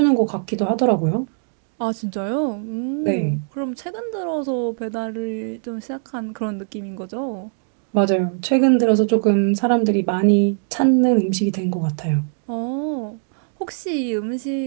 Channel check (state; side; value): silent; left; digital silence